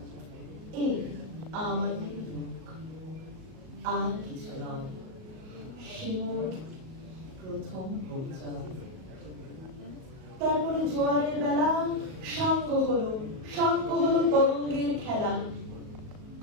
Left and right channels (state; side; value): late; left; 38 ms